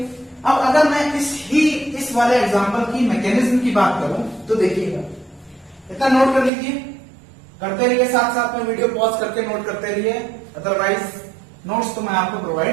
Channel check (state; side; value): drops out; left; at 6.5 s